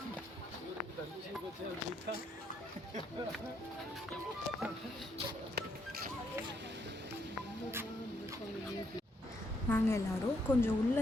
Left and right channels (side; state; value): both; normal; correlation 0.74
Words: நாங்கள் எல்லோரும் கொஞ்சம் உள்ளே